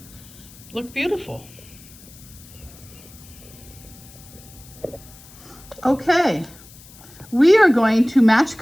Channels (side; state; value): left; noise; hiss, 21 dB below the sound